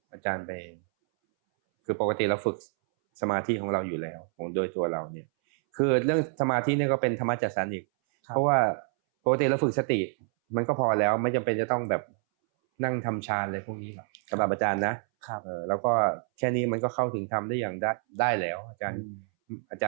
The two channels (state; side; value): silent; left; 59 dB below the other